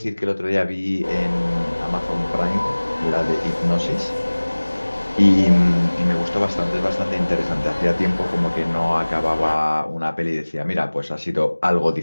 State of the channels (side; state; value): both; inverted; correlation -1.00